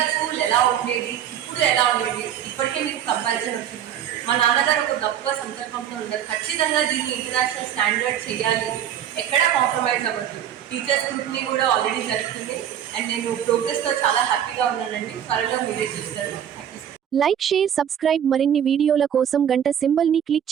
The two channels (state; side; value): quieter; left; 9.7 dB